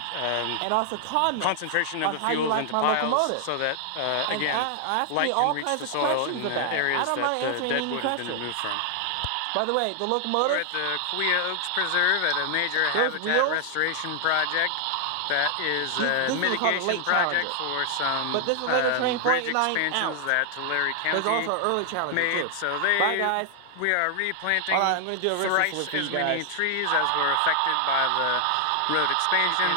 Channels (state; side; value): different; both; correlation 0.00